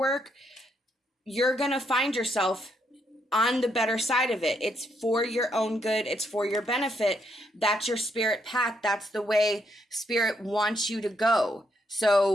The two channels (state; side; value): normal; both; correlation 0.76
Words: you're going to find yourself on the better side of it. It's for your own good. It's for your benefit. That's your spirit path. That's the way Spirit wants you to go.